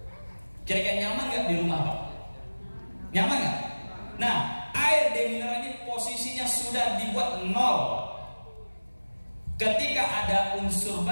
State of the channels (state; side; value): inverted; both; correlation -1.00